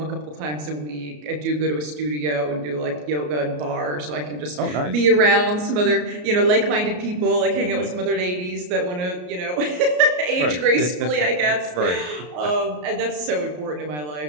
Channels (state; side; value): late; left; 33 ms